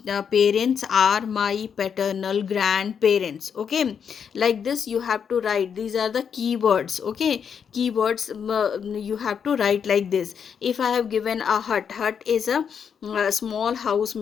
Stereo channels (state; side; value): quieter; right; 7.2 dB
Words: parents are my paternal grandparents. Okay, like this you have to write. These are the keywords. Okay, keywords you have to write like this. If I have given a hut, hut is a small house